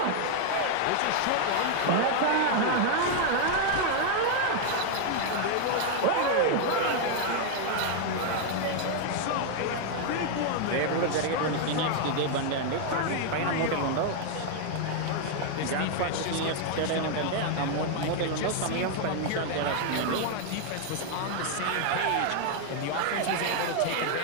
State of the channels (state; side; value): different; both; correlation 0.00